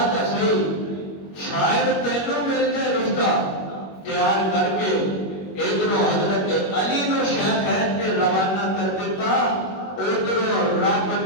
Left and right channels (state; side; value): late; right; 21 ms